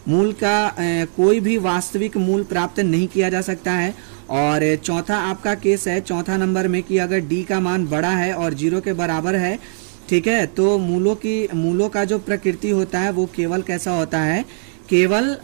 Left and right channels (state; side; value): silent; left; digital silence